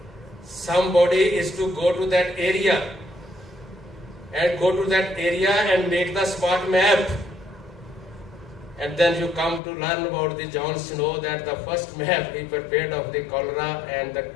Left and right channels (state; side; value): drops out; right; at 9.6 s